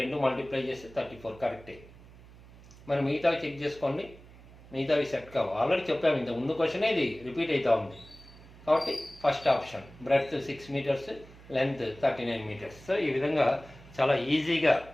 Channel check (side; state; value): right; noise; hum, 21 dB below the sound